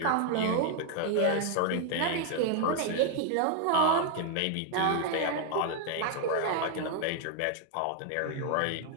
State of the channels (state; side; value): different; both; correlation 0.00